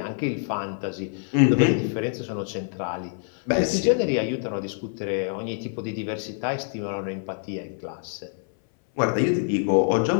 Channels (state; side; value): silent; right; 58 dB below the other